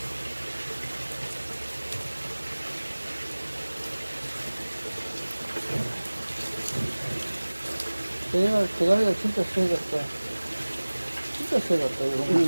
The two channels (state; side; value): inverted; both; correlation -1.00